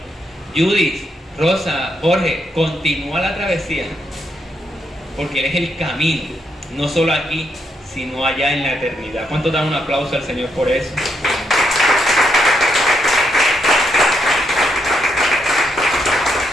Judith, Rosa, Jorge, continúa la travesía, porque Él es el camino, no solo aquí, sino allá en la eternidad. ¿Cuántos dan un aplauso al Señor por eso?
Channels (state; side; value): normal; both; correlation 0.78